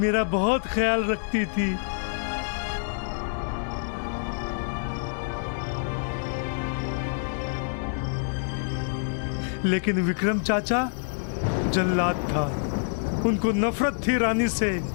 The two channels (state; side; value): silent; right; digital silence